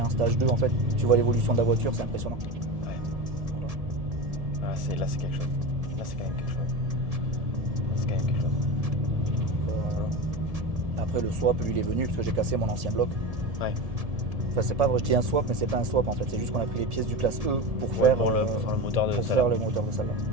stage 2 en fait, tu vois l'évolution de la voiture, c'est impressionnant. Ouais. Voilà. Là c'est quelque chose. Là c'est quand même quelque chose. Après le swap lui il est venu parce que j'ai cassé mon ancien bloc. Ouais. Enfin c'est pas vrai, je dis un swap mais c'est pas un swap en fait, c'est juste qu'on a pris les pièces du classe E pour faire le moteur de celle-là. Faire le moteur de celle-là.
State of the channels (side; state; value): left; late; 1.7 ms